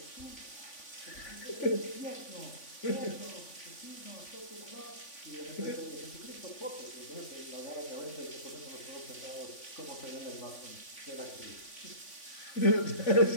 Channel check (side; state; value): right; late; 3.5 ms